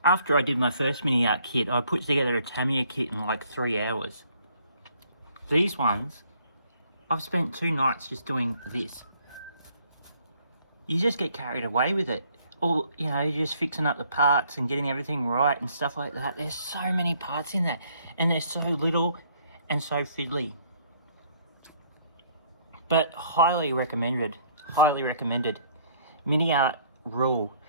after I did my first Miniart kit, I put together a Tamiya kit in like 3 hours. These ones, I've spent 2 nights just doing this. You just get carried away with it. Or, you know, you're just fixing up the parts and getting everything right and stuff like that. There's so many parts in that, and they're so little and so fiddly. But highly recommended, Miniart rule.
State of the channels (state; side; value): inverted; both; correlation -0.63